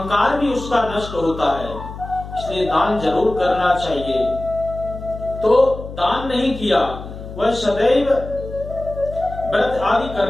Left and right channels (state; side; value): noise; left; hum, 12 dB below the sound